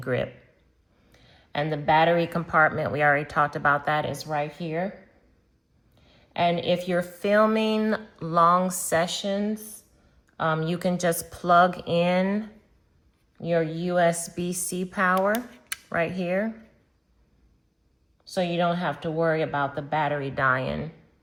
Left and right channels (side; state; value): both; identical; correlation 1.00